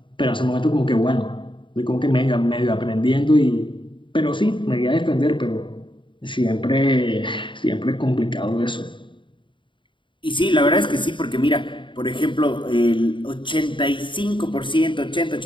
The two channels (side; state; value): right; late; 0.24 ms